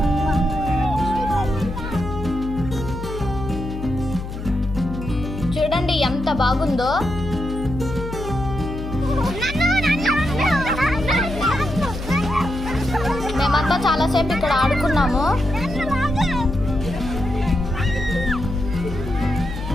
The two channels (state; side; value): noise; left; hum, 8 dB below the sound